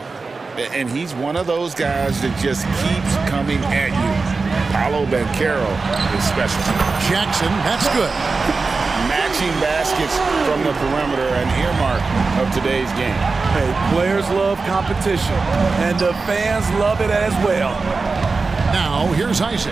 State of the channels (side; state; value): left; quieter; 4.1 dB